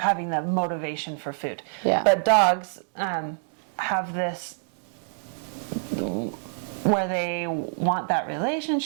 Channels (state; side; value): silent; left; digital silence